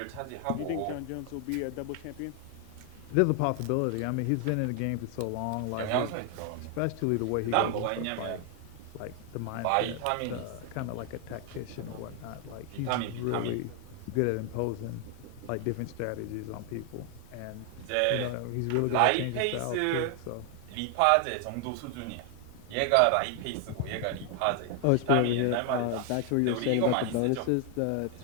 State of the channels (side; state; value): both; different; correlation 0.00